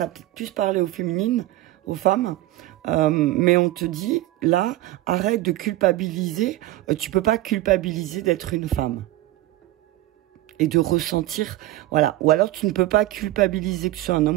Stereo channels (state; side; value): quieter; left; 16.2 dB